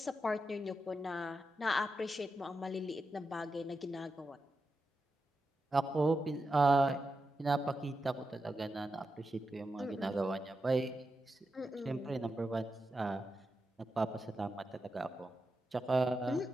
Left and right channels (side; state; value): both; normal; correlation 0.88